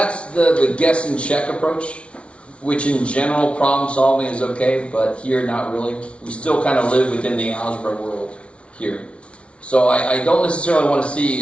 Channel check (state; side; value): late; right; 0.060 ms